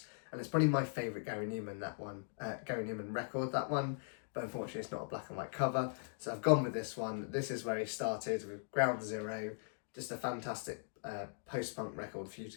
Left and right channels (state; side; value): silent; right; digital silence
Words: And it's probably my favourite Gary Newman record, that one. But unfortunately, it's not a black and white cover. So I've gone with this one. This is where he started with Ground Zero. Just a fantastic post-punk record for you